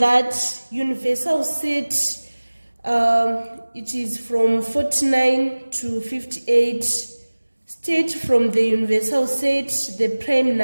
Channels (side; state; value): both; inverted; correlation -1.00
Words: universal set it is from 49 to 58, state from the universal set the prime